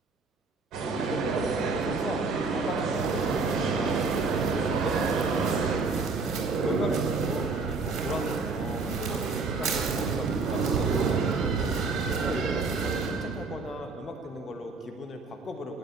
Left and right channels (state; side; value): quieter; left; 4.0 dB